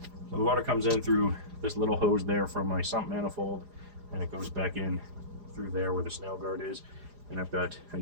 So the water comes in through this little hose there from my sump manifold, and it goes back in through there where the snail guard is. And I've got a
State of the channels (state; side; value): late; left; 4.9 ms